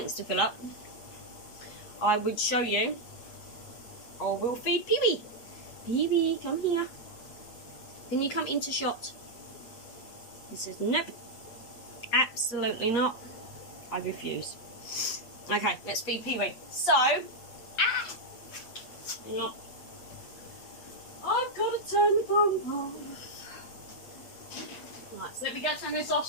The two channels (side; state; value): right; late; 8.4 ms